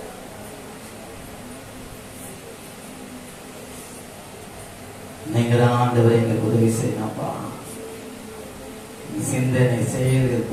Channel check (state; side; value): identical; both; correlation 1.00